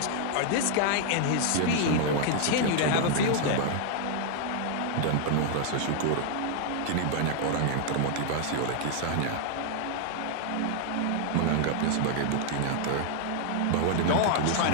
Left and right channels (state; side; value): different; both; correlation 0.00